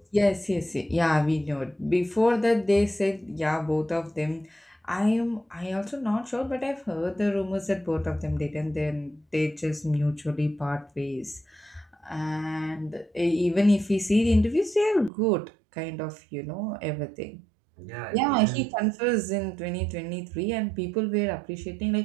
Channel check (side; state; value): left; drops out; at 15.1 s